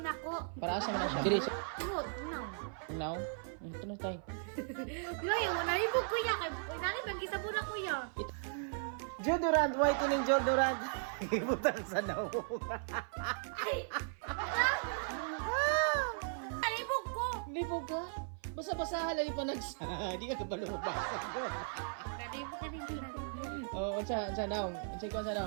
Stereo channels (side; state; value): left; silent; 53 dB below the other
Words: Para asa man na siya. Diri sa now. Ito na tayo. Yung nalibog ko ya kay nani bang gisabon ako ya. Deodorant, whitening deodorant. Ibutang sa naong. Nalibog ko. Hindi po ba? Basa-basa halay pa nagsa. Di ka kabalubasa ko. Nalibog ka din nalibog. Oh, unsa naong? Unsa ko unsa